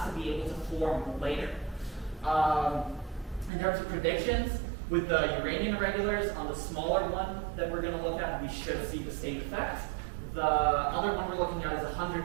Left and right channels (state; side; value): drops out; left; at 3.5 s